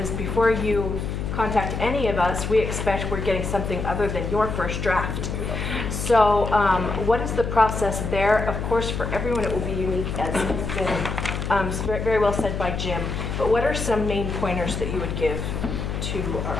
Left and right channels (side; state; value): left; noise; hum, 3 dB below the sound